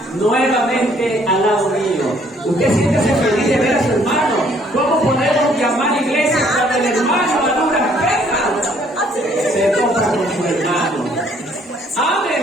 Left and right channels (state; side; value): normal; both; correlation 0.63